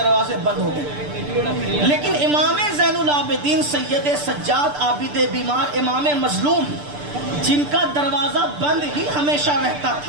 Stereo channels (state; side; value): late; left; 6.8 ms